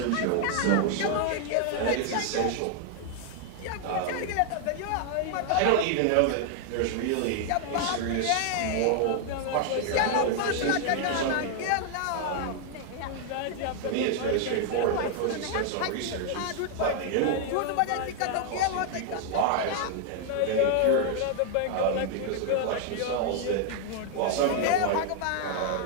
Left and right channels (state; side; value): different; both; correlation 0.00